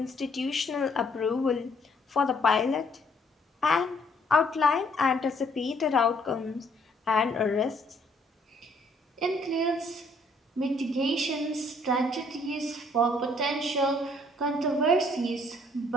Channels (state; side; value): normal; both; correlation 0.65